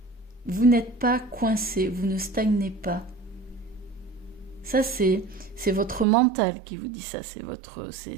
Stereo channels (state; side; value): drops out; left; at 6.1 s